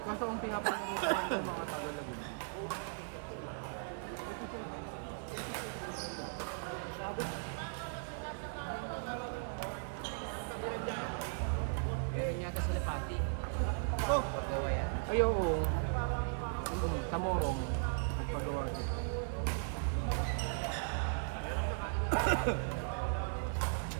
kaso ang pinapalaro ko lang ayaw ko. Tamorong.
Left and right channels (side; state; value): left; silent; 53 dB below the other